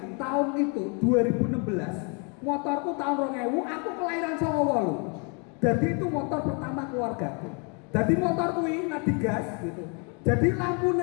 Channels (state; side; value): quieter; right; 35.5 dB